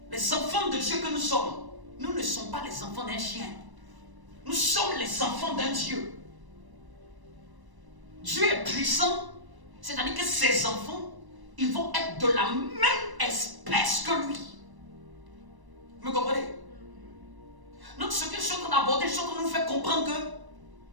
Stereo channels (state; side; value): late; left; 1.0 ms